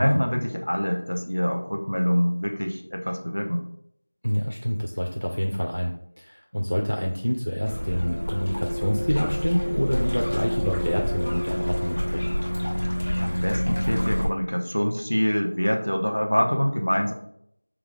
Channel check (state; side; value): inverted; both; correlation -1.00